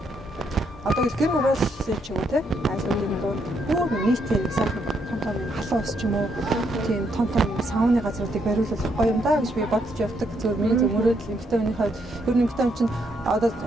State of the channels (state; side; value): normal; both; correlation 0.75